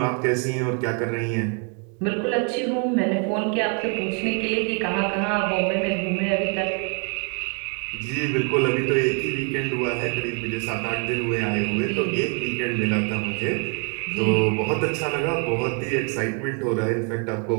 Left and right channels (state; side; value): quieter; left; 37.4 dB